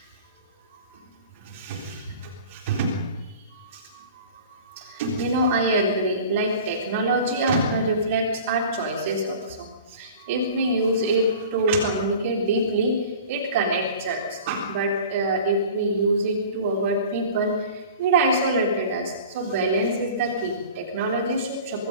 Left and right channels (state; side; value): inverted; both; correlation -0.41